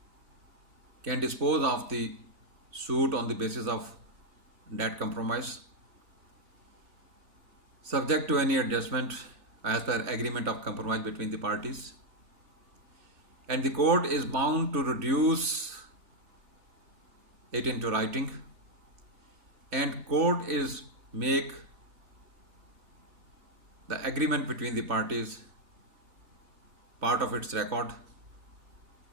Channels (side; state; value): left; late; 3.4 ms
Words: can dispose of the suit on the basis of that compromise, subject to any adjustment as per agreement of compromise between the parties. And the court is bound to reduce it into writing, and court is make the agreement between the parties part of its record.